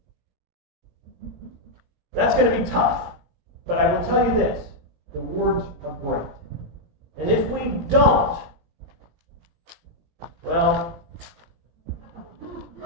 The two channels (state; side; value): late; left; 17 ms